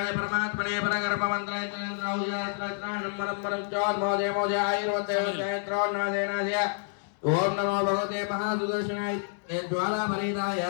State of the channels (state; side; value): silent; right; digital silence